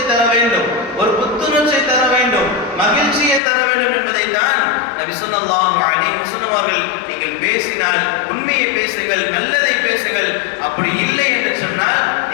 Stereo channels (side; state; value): right; drops out; at 3.4 s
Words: தர வேண்டும், ஒரு புத்துணர்ச்சியை தர வேண்டும், மகிழ்ச்சியை தர வேண்டும் என்பதை தான் நபி ஸல்லல்லாஹு அலைஹி வஸல்லம் அவர்கள், நீங்கள் பேசினால் உண்மையை பேசுங்கள், நல்லதை பேசுங்கள், அப்படி இல்லை என்று சொன்னால்